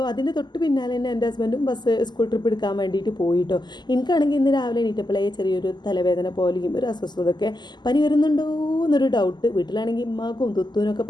അതിൻ്റെ തൊട്ട് പിന്നാലെ തന്നെ എൻ്റെ ഹസ്ബൻഡും സ്കൂൾ ട്രിപ്പ് എടുക്കാൻ വേണ്ടിയിട്ട് പോയിട്ടോ. എനിക്കാണെങ്കിൽ ഇന്ന് രാവിലെ എണീറ്റപ്പോഴേ ചെറിയൊരു തലവേദന പോലെയും ഒരു അസ്വസ്ഥതയൊക്കെ, പനി വരുന്നുണ്ടോ എന്നൊരു ഡൗട്ട്. വീട്ടിലാണെങ്കിൽ ഉമ്മാക്കും തുത്തൂനൊക്കെ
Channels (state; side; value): late; right; 0.21 ms